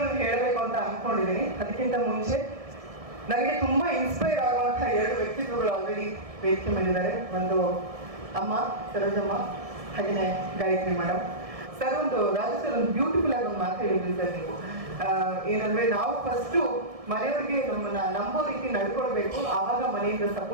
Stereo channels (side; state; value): left; late; 1.7 ms